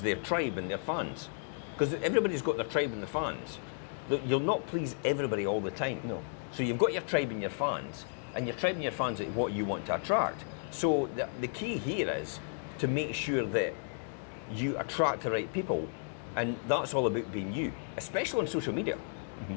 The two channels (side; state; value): right; silent; digital silence